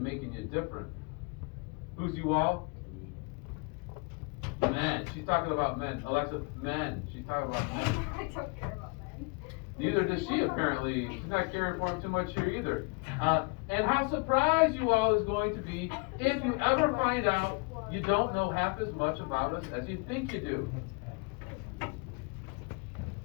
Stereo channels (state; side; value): quieter; right; 32.2 dB